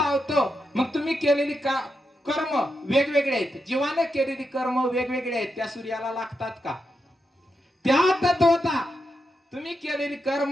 मग तुम्ही केलेली कर्म वेगवेगळे आहेत. जीवाने केलेली कर्म वेगवेगळे आहेत. त्या सूर्याला लागतात का? त्या तत्वता तुम्ही केलेली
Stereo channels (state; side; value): normal; both; correlation 0.85